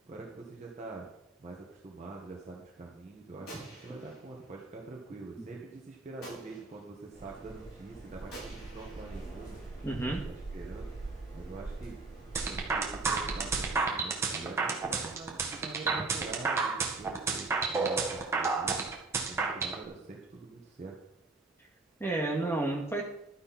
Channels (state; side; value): quieter; left; 3.5 dB